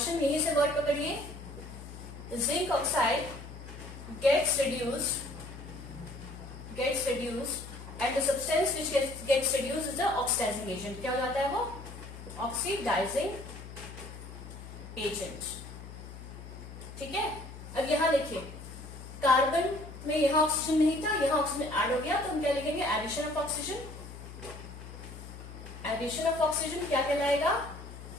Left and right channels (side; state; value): left; noise; hum, 13 dB below the sound